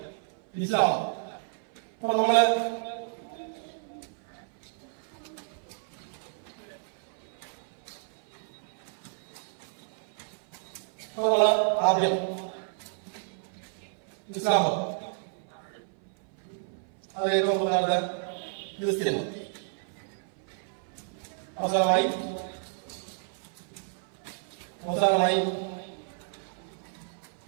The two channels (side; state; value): left; silent; 56 dB below the other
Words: ഇസ്ലാം. അപ്പൊ നമ്മള് ആദ്യം ഇസ്ലാം മതം, അത് ഏറ്റവും പ്രധാനപ്പെട്ട ക്രിസ്ത്യൻ മതം, അവസാനമായി